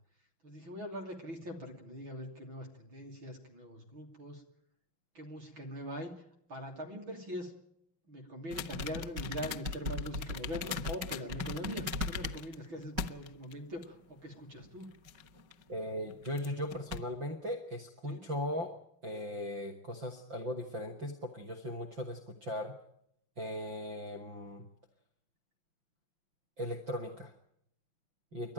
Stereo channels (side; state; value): left; late; 5.5 ms